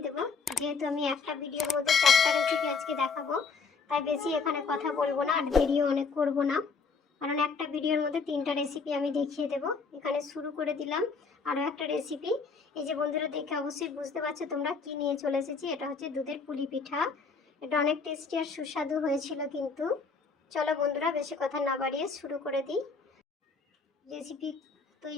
দেবো। যেহেতু আমি একটা ভিডিওর মধ্যে 4টা রেসিপি আজকে দেখাবো, তাই বেশি এখানে কথা বলবো না, আর ভিডিও অনেক করবো না, কারণ একটা ভিডিওর মধ্যে 3টা রেসিপি আমি দেখিয়ে দেবো। এখানে শুরু করে দিলাম আরও একটা রেসিপি। এই যে বন্ধুরা, দেখে অবশ্যই বুঝতে পারছো তোমরা কি নিয়ে চলে এসেছি। এটা হচ্ছে দুধের পুলি পিঠা। এটা অনেক টেস্টি আর সুস্বাদু হয়েছিল কিন্তু। চলো বন্ধুরা, বেশি কথা না বাড়িয়ে শুরু করে দিই। রেসিপি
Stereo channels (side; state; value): right; quieter; 4.9 dB